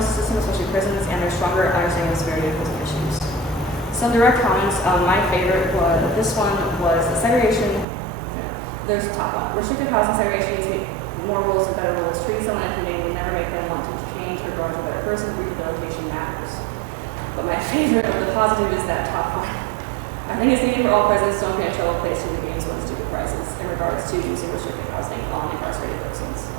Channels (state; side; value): drops out; left; at 7.9 s